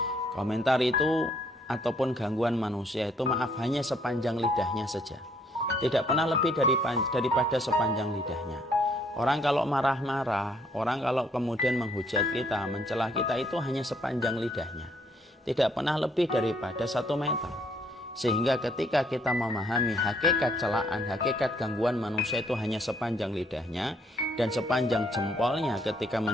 Komentar itu ataupun gangguan manusia itu hanya sepanjang lidahnya saja. Tidak pernah lebih daripada sepanjang lidahnya. Orang kalau marah-marah, orang kalau kemudian menghujat kita, mencela kita itu hanya sepanjang lidahnya. Tidak pernah lebih daripada 1 meter. Sehingga ketika kita memahami hakikat celaan, hakikat gangguan manusia itu hanya sepanjang lidahnya dan sepanjang jempolnya ketika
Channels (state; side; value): normal; both; correlation 0.67